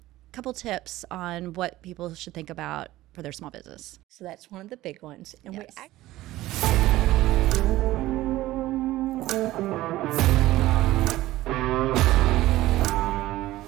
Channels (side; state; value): left; quieter; 16.5 dB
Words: Couple tips on what people should think about for their small business. So that's one of the big ones. And Yes.